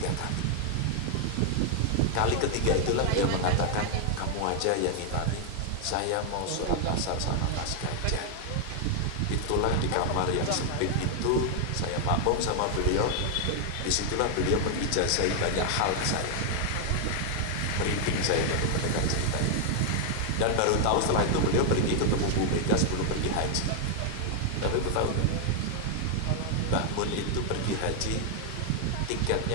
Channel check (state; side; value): different; both; correlation 0.00